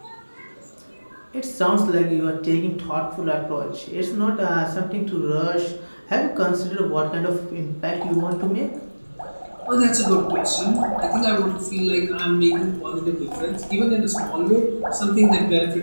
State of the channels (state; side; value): inverted; both; correlation -1.00